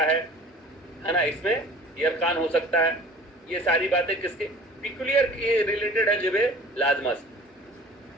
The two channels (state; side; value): normal; both; correlation 0.45